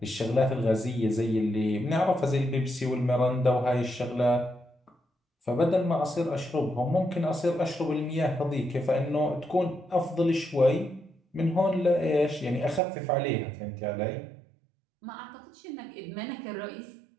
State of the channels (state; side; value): drops out; left; at 12.8 s